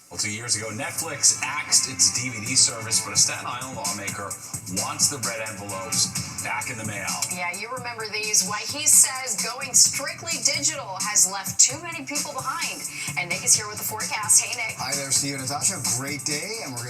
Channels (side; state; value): both; identical; correlation 1.00